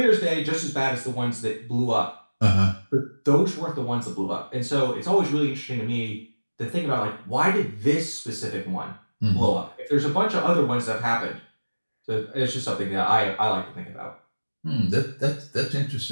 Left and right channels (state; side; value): inverted; both; correlation -1.00